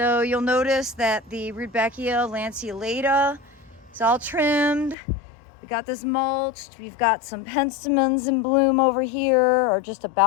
you'll notice that the Rudbeckia lanceolata is all trimmed. We got this mulched. We've got some penstemons in bloom over here, or just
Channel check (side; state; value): right; drops out; at 5.0 s